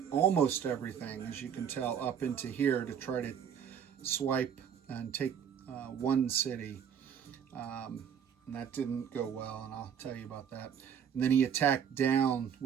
almost everything, as you can tell, up into here to try to swipe and take one city. And that didn't go well, and I'll tell you about that. And then he attacked down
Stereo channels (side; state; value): left; quieter; 8.2 dB